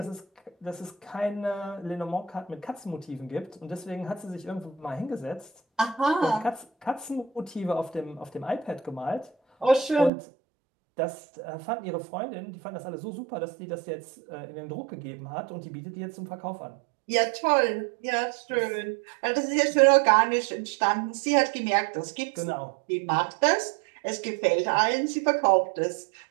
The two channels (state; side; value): drops out; left; at 10.1 s